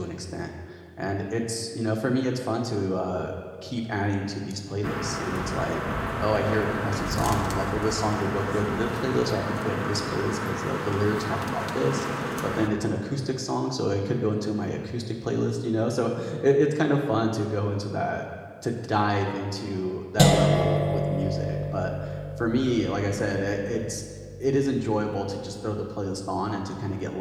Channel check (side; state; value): both; identical; correlation 1.00